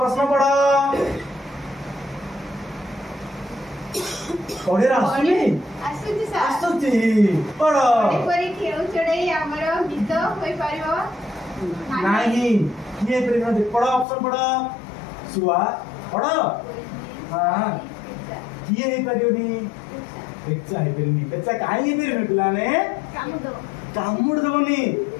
प्रश्न पढ़ पढ़े आसुनी ଆସୁଛି ସାର୍ आसुची पढ़ ଏପରି ଖେଳ ଚଢ଼େଇ ଆମର ଗୀତ ହୋଇପାରିବ नहीं ये प्रेम पढ़ ऑप्शन पढ़ सुआ पढ़ हाँ किए हे परियोनी बेचा हे परियोनी बेचा काहे हे परियोनी पिलाने କାମୁଡ कामुड़ देबनी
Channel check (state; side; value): drops out; right; at 14.1 s